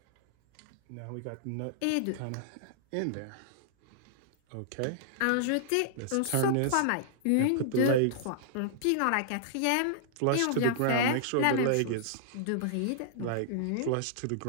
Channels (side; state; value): both; different; correlation -0.01